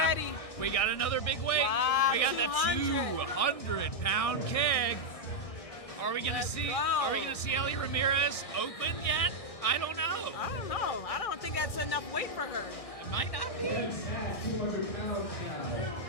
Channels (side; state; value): right; late; 1.6 ms